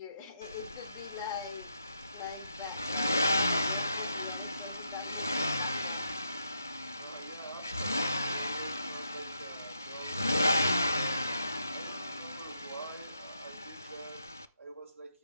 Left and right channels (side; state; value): both; inverted; correlation -0.80